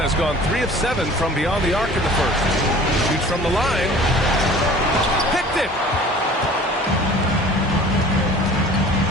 gone 3 of 7 from beyond the arc in the first. Shoots from the line. Picked it.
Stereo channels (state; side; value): normal; both; correlation 0.46